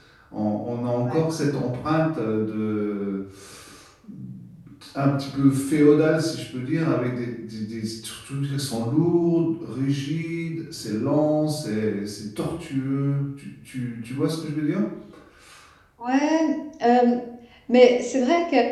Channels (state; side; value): identical; both; correlation 1.00